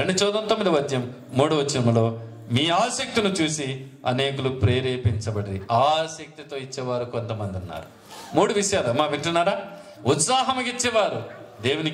చూద్దాం. 9వ అధ్యాయం 3వ వచనములో మీ ఆసక్తిని చూసి అనేకులు ప్రేరేపించబడి. ఆసక్తితో ఇచ్చేవారు కొంతమంది ఉన్నారు. 3 విషయాలు అమ్మా వింటున్నారా? ఉత్సాహముగా ఇచ్చేవారు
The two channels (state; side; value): identical; both; correlation 1.00